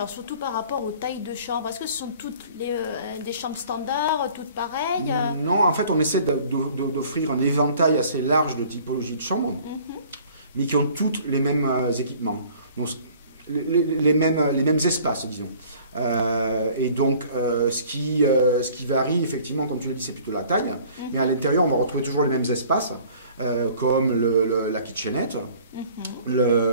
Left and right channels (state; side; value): inverted; both; correlation -0.51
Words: surtout par rapport aux tailles de chambres, est-ce que ce sont toutes des chambres standards, toutes pareilles? Non, en fait on essaie d'offrir un éventail assez large de typologies de chambres, mais qui ont toutes les mêmes équipements, donc les mêmes espaces, disons. Et donc ce qui varie effectivement, comme tu l'as dit, c'est plutôt la taille, mais à l'intérieur on va retrouver toujours les mêmes espaces, comme la kitchenette,